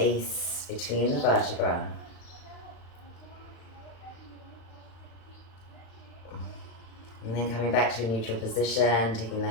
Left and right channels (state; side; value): late; right; 36 ms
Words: between the vertebrae. And then coming back to a neutral position, taking the